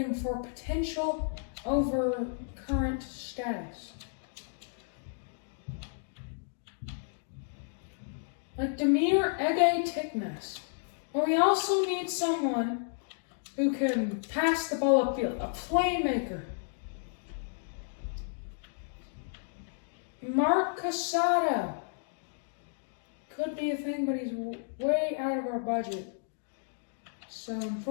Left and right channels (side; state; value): right; silent; digital silence